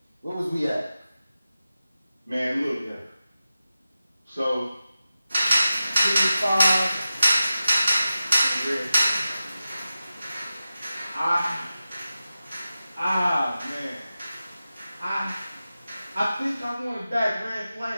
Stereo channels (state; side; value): inverted; both; correlation -0.94